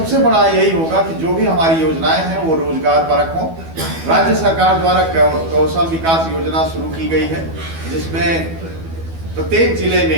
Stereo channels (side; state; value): left; late; 12 ms